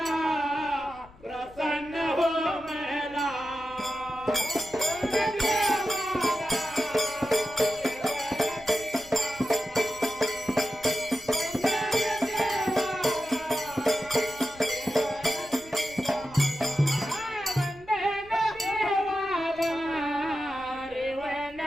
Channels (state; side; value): noise; left; rumble, 23 dB below the sound